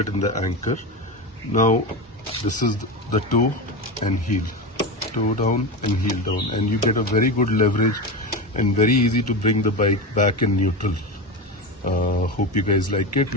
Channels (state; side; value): normal; both; correlation 0.20